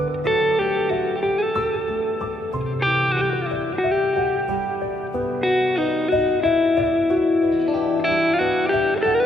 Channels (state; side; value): normal; both; correlation 0.76